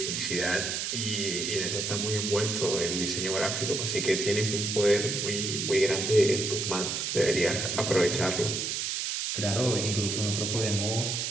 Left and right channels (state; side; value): noise; right; hiss, 1 dB below the sound